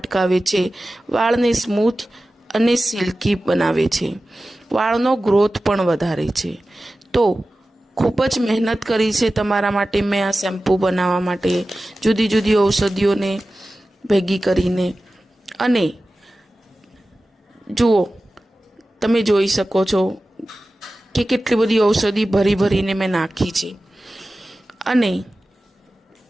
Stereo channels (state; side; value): normal; both; correlation 0.95